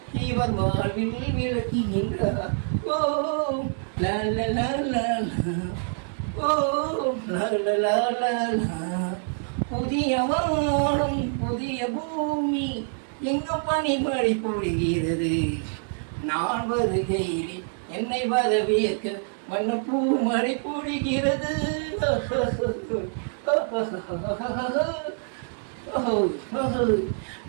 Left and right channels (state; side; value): silent; left; 61 dB below the other